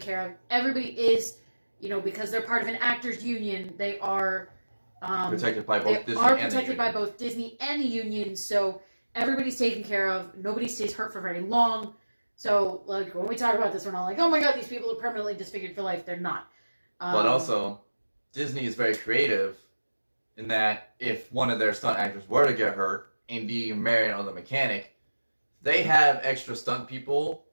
of. Everybody is, because they're part of an actors union, they are protected by both Disney and the union. So everybody's taken care of. Nobody stays hurt for very long. So, like, when we talk about this, we're not like, oh my god, these people are permanently disfigured for life. They're not. But also, Disney is very creative in that if one of their stunt actors were to get hurt, Indy, Marion, or the mechanic, they have extra stunt people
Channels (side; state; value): both; inverted; correlation -1.00